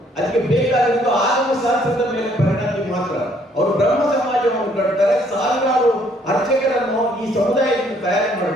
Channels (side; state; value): both; normal; correlation 0.65